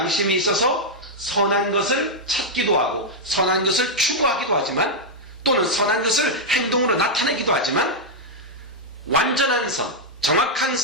있어서 선한 것을 찾기도 하고 선한 것을 추구하기도 하지만 또는 선한 것을 행동으로 나타내기도 하지만 완전한 선, 정확한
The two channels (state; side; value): normal; both; correlation -0.03